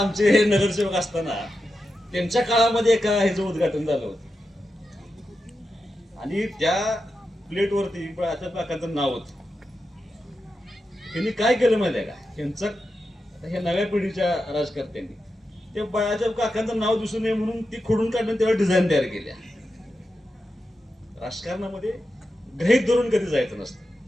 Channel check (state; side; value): normal; both; correlation 0.89